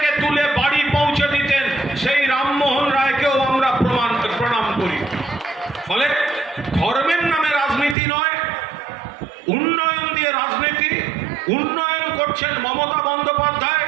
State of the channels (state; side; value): drops out; left; at 8.0 s